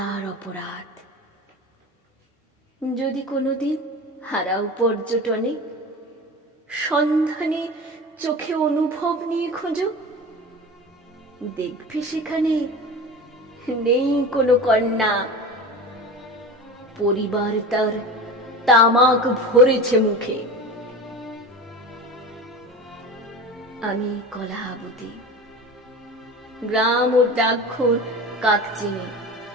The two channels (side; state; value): both; normal; correlation 0.32